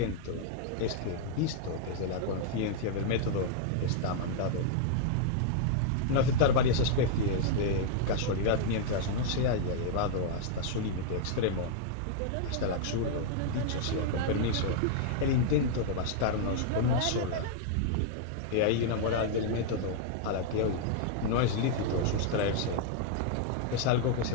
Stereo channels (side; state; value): both; different; correlation -0.01